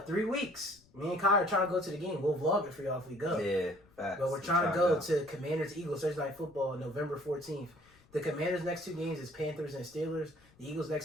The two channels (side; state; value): left; noise; rumble, 29 dB below the sound